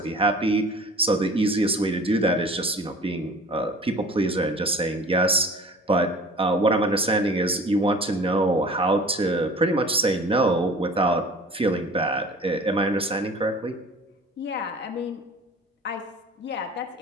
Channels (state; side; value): normal; both; correlation 0.44